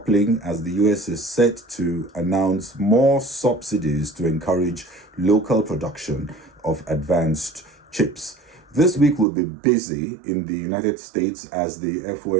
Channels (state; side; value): drops out; left; at 9.2 s